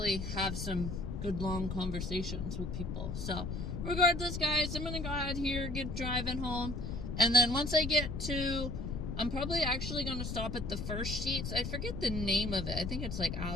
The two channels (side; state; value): left; noise; rumble, 4 dB below the sound